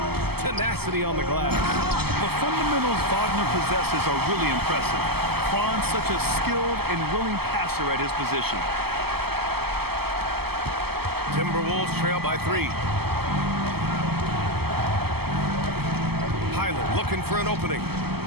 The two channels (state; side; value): late; left; 0.96 ms